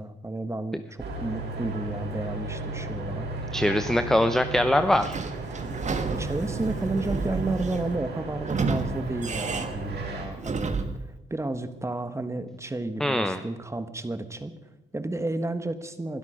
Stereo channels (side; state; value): both; normal; correlation 0.79